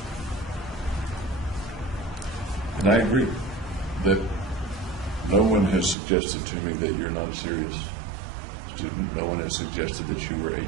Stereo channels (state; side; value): drops out; left; at 6.0 s